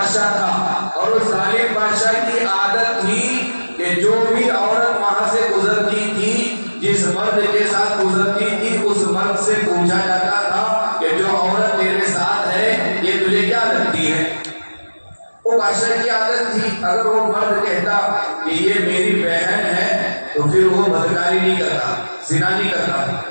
تھا، اور اس ظالم بادشاہ کی عادت تھی کہ جو بھی عورت وہاں سے گزرتی تھی، جس مرد کے ساتھ گزرتی تھی، اس مرد سے پوچھا جاتا تھا کہ جو عورت تیرے ساتھ ہے یہ تجھے کیا لگتی ہے؟ وہ بادشاہ کی عادت تھی، اگر وہ مرد کہتا کہ یہ میری بہن ہے تو پھر وہ بدکاری نہیں کرتا، زنا نہیں کرتا۔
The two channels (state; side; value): inverted; both; correlation -1.00